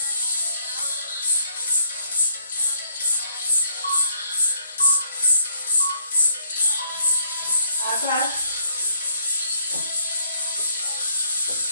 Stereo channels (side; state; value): both; inverted; correlation -0.67